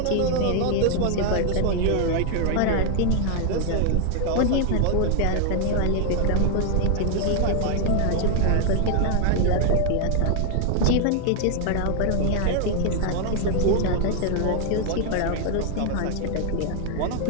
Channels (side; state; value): both; different; correlation 0.00